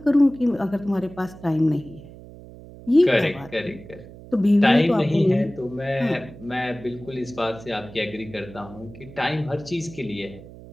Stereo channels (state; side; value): noise; right; hum, 17 dB below the sound